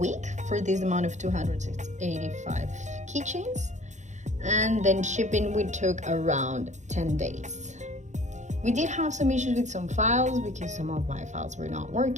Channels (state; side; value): late; left; 0.35 ms